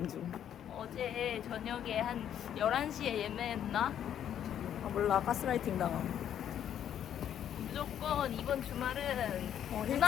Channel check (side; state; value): right; quieter; 9.9 dB